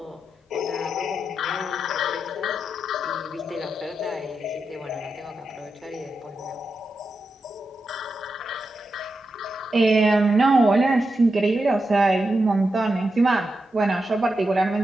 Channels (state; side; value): normal; both; correlation 0.88